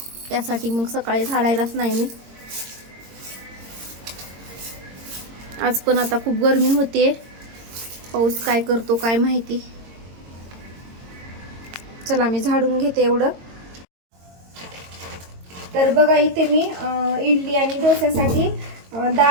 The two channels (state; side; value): late; left; 22 ms